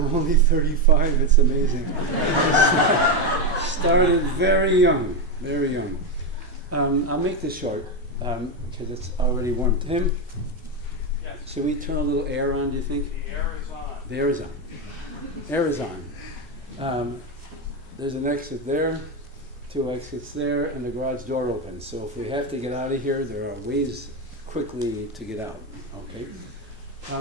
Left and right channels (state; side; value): normal; both; correlation 0.09